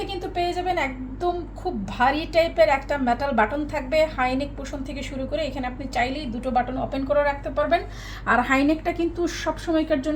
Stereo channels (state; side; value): identical; both; correlation 1.00